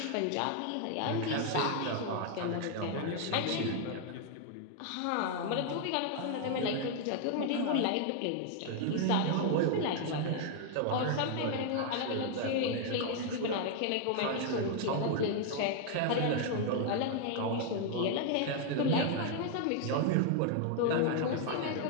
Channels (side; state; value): both; different; correlation 0.00